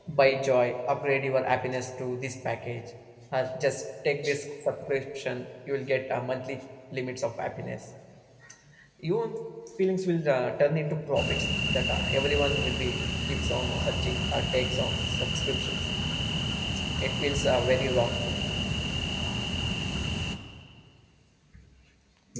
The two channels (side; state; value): both; identical; correlation 1.00